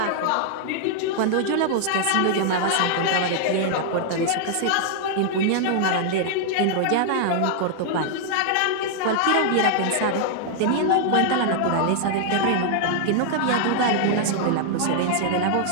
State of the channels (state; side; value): different; both; correlation 0.00